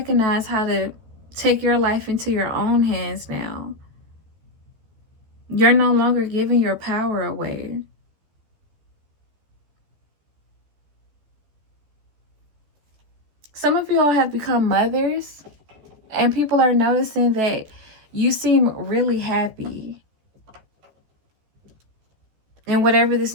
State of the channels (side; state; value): left; late; 14 ms